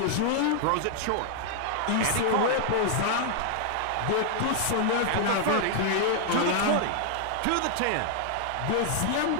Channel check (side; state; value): both; different; correlation 0.00